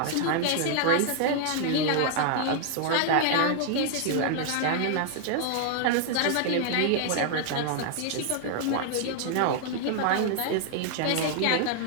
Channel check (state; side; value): different; both; correlation 0.00